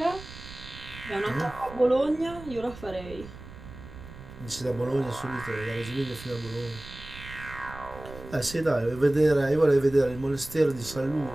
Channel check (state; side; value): noise; right; rumble, 15 dB below the sound